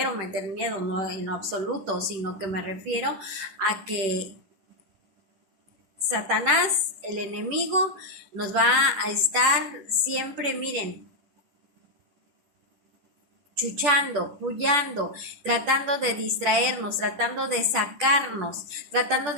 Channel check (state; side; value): late; left; 10 ms